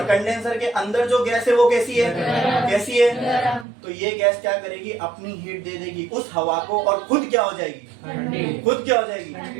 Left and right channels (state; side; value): drops out; left; at 3.7 s